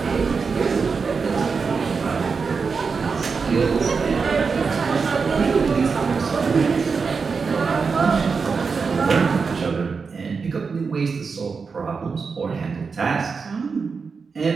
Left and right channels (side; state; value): left; quieter; 5.1 dB